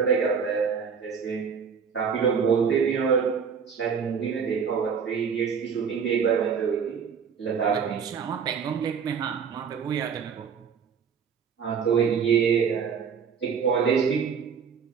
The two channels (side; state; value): left; quieter; 6.6 dB